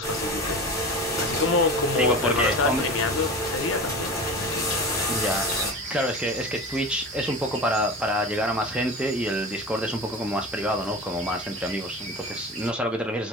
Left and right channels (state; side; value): normal; both; correlation 0.31